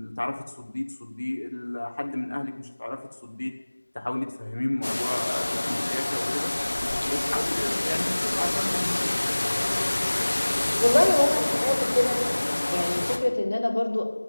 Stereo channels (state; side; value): inverted; both; correlation -1.00